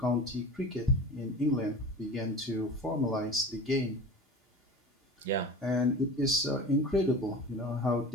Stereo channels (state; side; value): normal; both; correlation 0.35